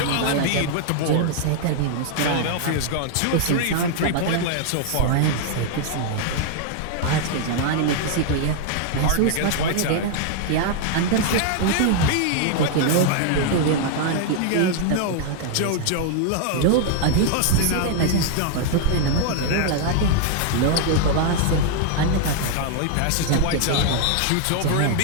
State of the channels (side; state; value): both; different; correlation 0.00